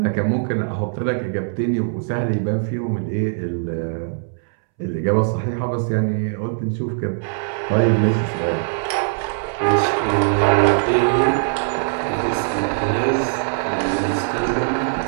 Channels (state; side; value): silent; left; 65 dB below the other